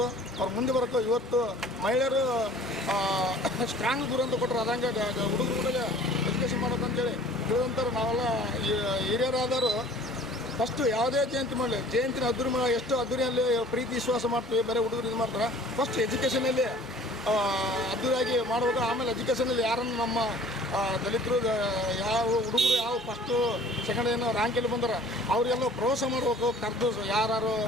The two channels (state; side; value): normal; both; correlation 0.49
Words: ಅವ್ರು ಮುಂದೆ ಬರಬೇಕು. ಇವತ್ತು ಮಹಿಳೆಯರು ಸ್ಟ್ರಾಂಗ್ ದೂರ ಅಂತ ಕೊಟ್ಟರು, ಅದಂಗೆ ಹುಡುಗರಿಗೆ ಎಜುಕೇಷನ್ ಮಾಡಬೇಕು ಅಂತೇಳಿ ತಿಳಿದಂತಾರೆ. ನಾವೆಲ್ಲ ಹಿರಿಯರಾದವರು ಫಸ್ಟು ಯಾವುದೇ ಜಯಂತಿ ಮಾಡಲಿ, ಜಯಂತಿನ ಎಷ್ಟು ಅದ್ದೂರಿಯಲ್ಲಿ ಪ್ರೀತಿ ವಿಶ್ವಾಸ ಮಾಡ್ತೀವಿ, ಬೇರೆ ಹುಡುಗರು ಇದು ಮಾಡ್ತಾರೆ. ಫಸ್ಟ್ ಎಜುಕೇಷನಲ್ಲಿ ಅದ್ದೂರಿಯಾಗಿ ಮಾಡಬೇಕು. ಆಮೇಲೆ ಎಜುಕೇಷನಲ್ಲಿ ಯಾರನ್ನು ನಮ್ಮ ದಲಿತರು ಯಾವ ಹುಡುಗರು ಯಾವ ಫಸ್ಟು ಸೆಕೆಂಡ್ ಏನೋ ರ್ಯಾಂಕಲ್ಲಿ ಬಂದರೆ ಅವರಿಗೆಲ್ಲ ಪ್ರೋತ್ಸಾಹ ಮಾಡಬೇಕು. ಕರೆದು ಯಾರು